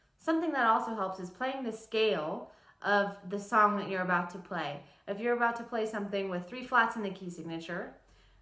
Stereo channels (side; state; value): both; identical; correlation 1.00